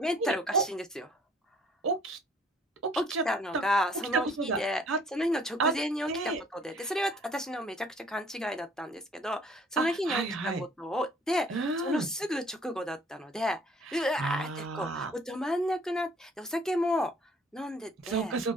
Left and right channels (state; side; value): normal; both; correlation 0.57